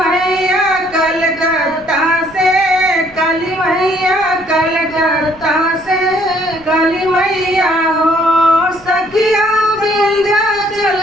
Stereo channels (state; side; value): noise; right; rumble, 25 dB below the sound